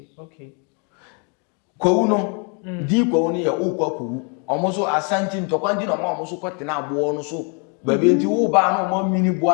kwawu no di kwawu no ye ukwa kwawu omoso asanti ntokwanti no ma omoso kwetena abo no so baby nti wo ba no mo mini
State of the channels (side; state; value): right; quieter; 37.0 dB